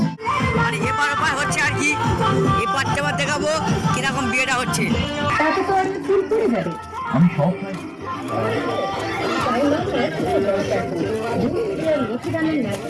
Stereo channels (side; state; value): both; identical; correlation 1.00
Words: মানে এপার ওপার হচ্ছে আর কি, এপার তেপার দেখাবো কিরকম বিয়েটা হচ্ছে। তাতে তো আমি ফুল পড়ে যাবে। আমি সব লক্ষ্মীদানের